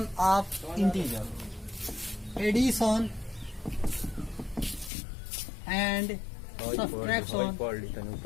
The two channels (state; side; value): drops out; right; at 4.9 s